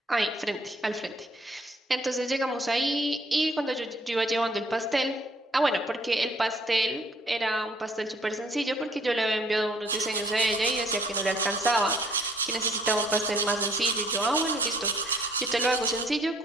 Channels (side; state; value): both; normal; correlation 0.61